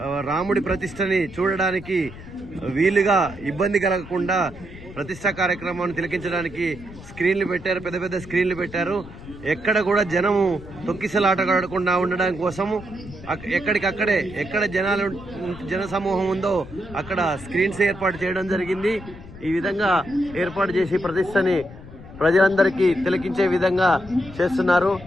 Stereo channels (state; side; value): noise; left; rumble, 16 dB below the sound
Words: రాముడి ప్రతిష్టని చూడడానికి వీలుగా ఇబ్బంది కలగకుండా ప్రతిష్టా కార్యక్రమాన్ని తిలకించడానికి స్క్రీన్లు పెట్టారు, పెద్ద పెద్ద స్క్రీన్లు పెట్టారు. ఎక్కడ కూడా జనము తొక్కిసలాటగాడకుండా ఉండడం కోసము ఎక్కడికక్కడే ఎక్కడ జన సమూహం ఉందో అక్కడ స్క్రీన్స్ ఏర్పాటు చేయడం జరిగింది. ఈ విధంగా ఏర్పాటు చేసి ప్రతిష్టని ప్రజలందరికీ తిలకించే విధంగా చేస్తున్నారు.